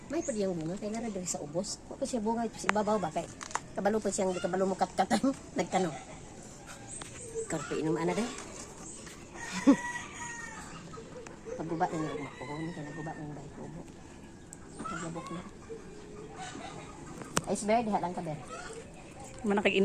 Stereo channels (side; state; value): both; identical; correlation 1.00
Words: May pa diyang bunga, kaya nga sa ubos. Ako siya bunga, ibabaw ba? Kaya kabalo pa siyang, di kabalo mo katkatan. Nagtanong. Karpe inom ana day. Pagguba na niya umak ko. Kaya nagguba na yung bahay ko. Naglabok na. Iceberg, diha lang ka, Ber. Mana kag